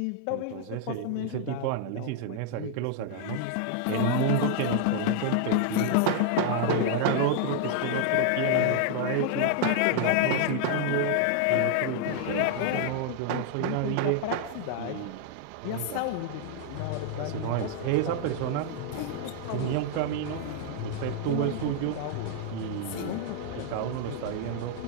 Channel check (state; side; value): different; both; correlation 0.00